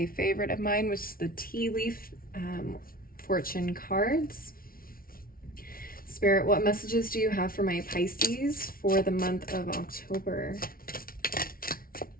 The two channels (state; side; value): late; right; 0.43 ms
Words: favorite of mine, which is the Tea Leaf Fortune cards. Spirit, what messages do you have for my Pisces for the month of October?